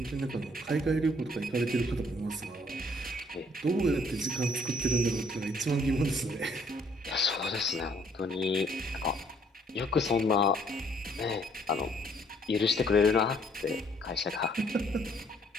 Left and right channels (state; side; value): normal; both; correlation 0.63